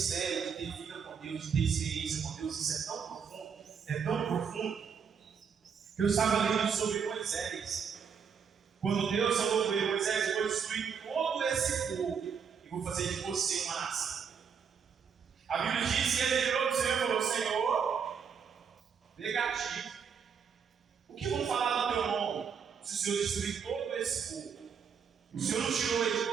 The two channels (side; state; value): left; quieter; 6.8 dB